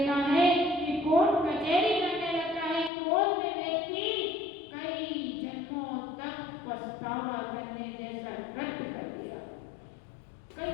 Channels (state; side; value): drops out; right; at 2.9 s